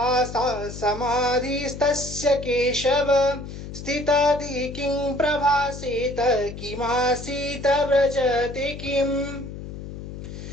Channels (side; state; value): left; noise; hum, 10 dB below the sound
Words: समाधिस्तस्य केशव स्थितादि किं प्रभासेत किमासीत व्रजते किम्